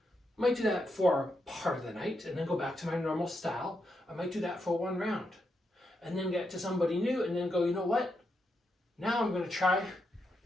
Might do that for part of the night and then go back to my normal style. I might do that for one round and then get to somebody new and then go, you know what? Now I'm gonna try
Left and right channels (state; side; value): normal; both; correlation 0.82